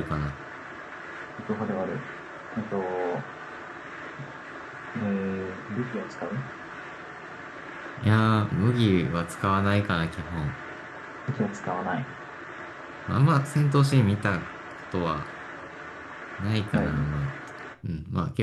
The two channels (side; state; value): both; identical; correlation 1.00